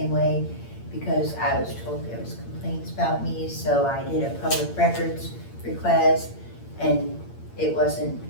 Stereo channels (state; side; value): late; right; 8.7 ms